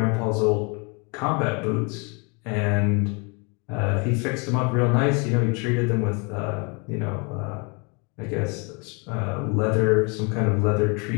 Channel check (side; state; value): right; quieter; 32.7 dB